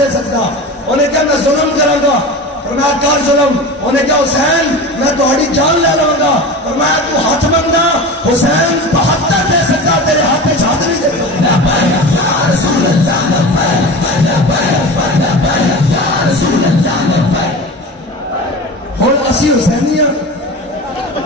سکتا. انہیں کیا میں ظلم کروں گا فرمایا کر ظلم. انہیں کہا حسین میں تہاڈی جان لے لوں گا. فرمایا تو ہاتھ منگنا. حسین 72 دے سکتا تیرے ہاتھ میں ہاتھ نہیں دے ہوں اسی حسینی ہاں.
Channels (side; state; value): both; normal; correlation 0.31